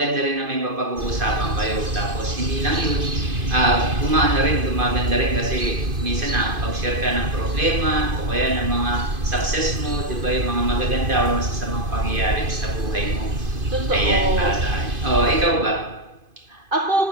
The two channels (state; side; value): late; left; 2.5 ms